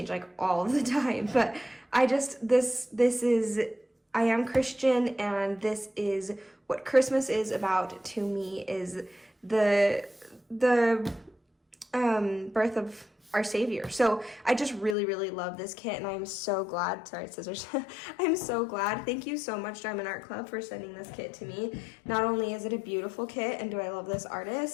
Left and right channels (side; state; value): right; drops out; at 15.0 s